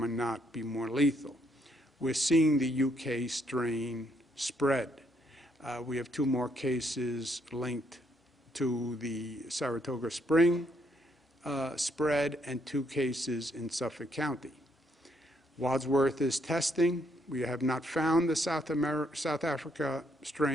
not be more lethal. We're seeing the UK strain spread. We have 2 more cases linked to the Saratoga Spring spread and 2 cases in Suffolk County. Wadsworth is testing. We have not found the South Africa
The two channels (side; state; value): both; normal; correlation 0.73